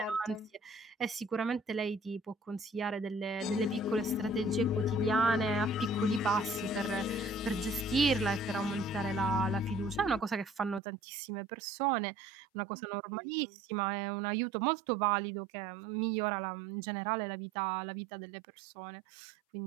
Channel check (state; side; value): drops out; left; at 10.8 s